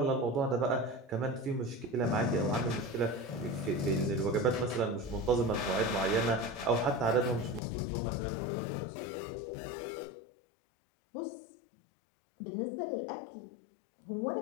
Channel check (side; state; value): right; drops out; at 7.6 s